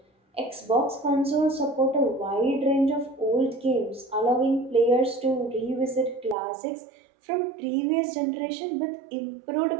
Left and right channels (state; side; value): drops out; left; at 6.4 s